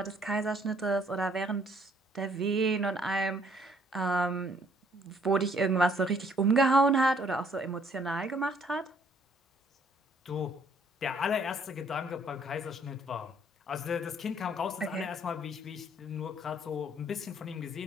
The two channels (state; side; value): normal; both; correlation 0.63